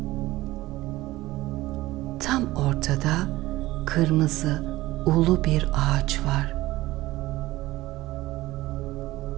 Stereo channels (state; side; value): quieter; left; 17.8 dB